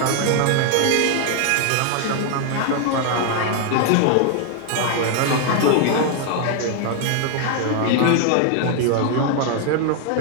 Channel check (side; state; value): both; different; correlation 0.00